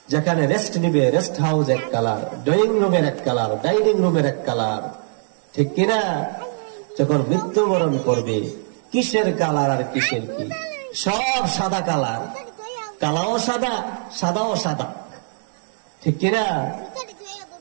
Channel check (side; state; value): left; silent; digital silence